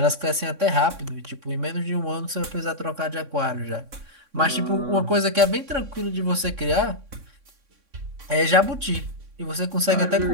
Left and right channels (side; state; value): left; late; 3.6 ms